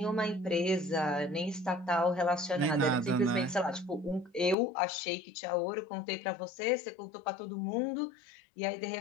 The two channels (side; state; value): right; drops out; at 4.5 s